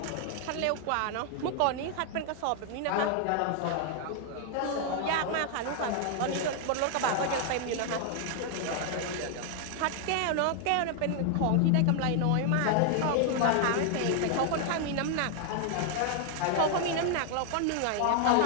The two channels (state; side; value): different; both; correlation 0.00